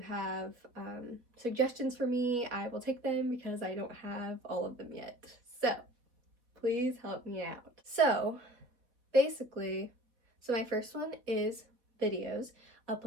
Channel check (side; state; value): left; late; 3.9 ms